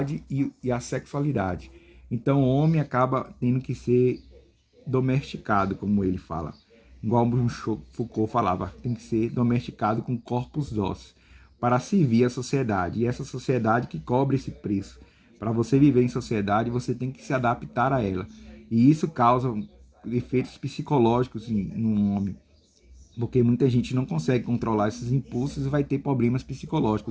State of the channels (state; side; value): identical; both; correlation 1.00